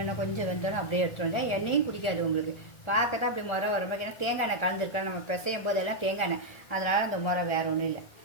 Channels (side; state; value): right; late; 1.7 ms